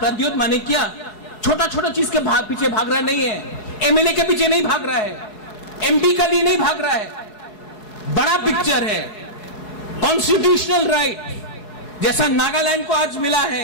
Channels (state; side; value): late; right; 4.7 ms